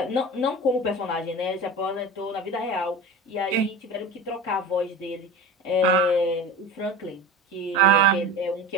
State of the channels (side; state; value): both; normal; correlation 0.31